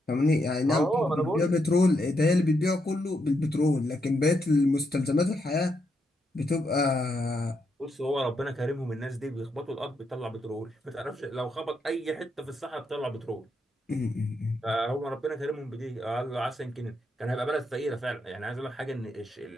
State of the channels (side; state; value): both; normal; correlation 0.80